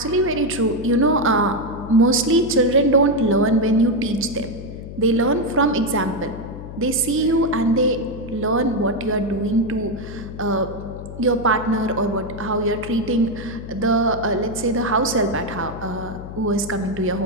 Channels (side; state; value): left; noise; hum, 11 dB below the sound